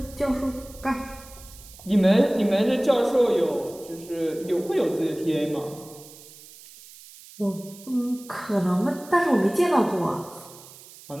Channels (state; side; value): noise; right; hiss, 20 dB below the sound